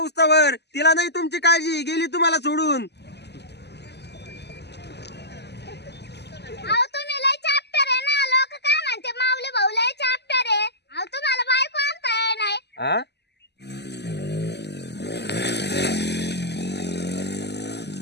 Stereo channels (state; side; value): late; right; 0.49 ms